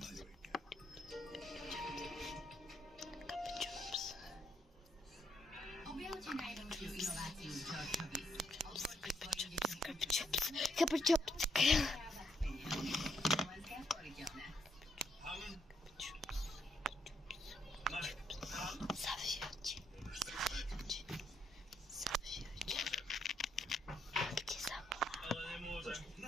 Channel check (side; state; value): both; normal; correlation 0.75